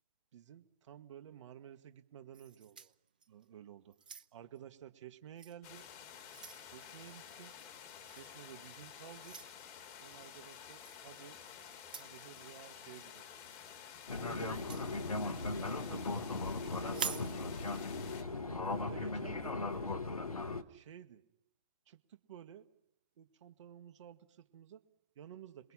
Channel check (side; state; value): both; inverted; correlation -0.37